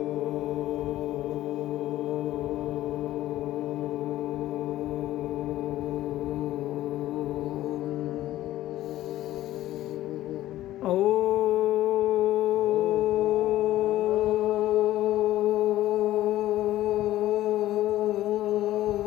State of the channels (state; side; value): quieter; right; 14.5 dB